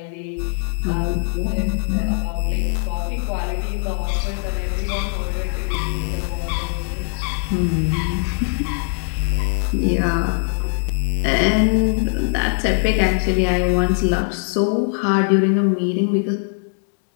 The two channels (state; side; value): silent; right; digital silence